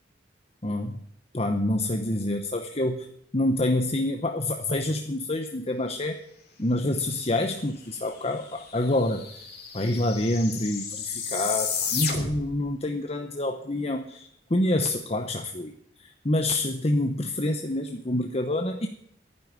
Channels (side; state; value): both; normal; correlation 0.57